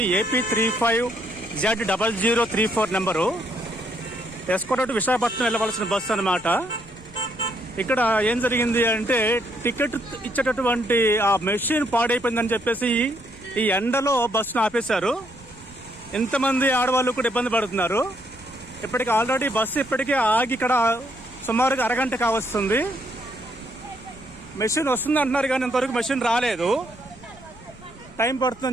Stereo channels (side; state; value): left; noise; rumble, 23 dB below the sound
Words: AP35Z0034 number. S. Kota to Visakhapatnam వెళ్ళవలసిన బస్సు అనమాట. ఇక్కడ ఏం జరిగింది అంటే టికెట్ ఇచ్చేటటువంటి ఆ మెషిన్ పాడైపోయిందని చెప్పేసి ఈ ఎండలో బస్సును ఆపేశారు. ఇంతమంది ఆడవాళ్ళు కూడా ఇబ్బంది పడుతున్నారు. ఇప్పటికి ఆల్రెడీ బస్సు ఇప్పటికే ఆగి ఇక్కడ సుమారుగా అరగంట కావస్తుంది. మెషిన్ వస్తుంది అంటున్నారు కానీ ఇంతవరకు మెషిన్ రాలేదు. టైం